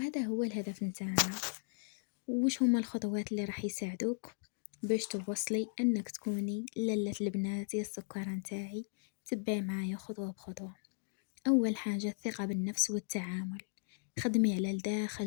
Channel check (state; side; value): silent; right; digital silence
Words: هو الهدف نتاعنا. وش هما الخطوات اللي راح يساعدوك باش توصلي أنك تكوني للة البنات يا السكر نتاعي؟ تبعي معايا خطوة بخطوة. أول حاجة الثقة بالنفس والتعامل، خدمي على